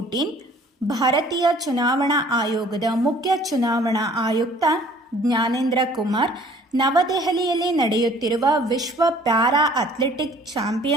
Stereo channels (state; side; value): normal; both; correlation 0.54